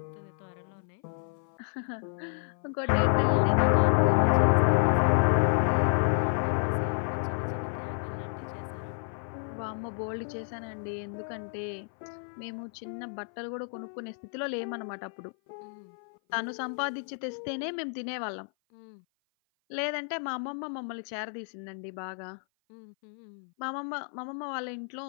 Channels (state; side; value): silent; right; 56 dB below the other